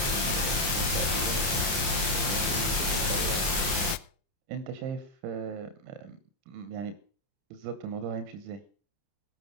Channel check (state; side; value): late; left; 30 ms